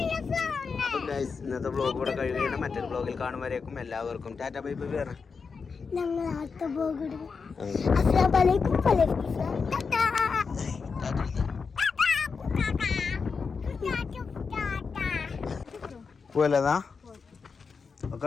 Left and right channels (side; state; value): right; quieter; 5.2 dB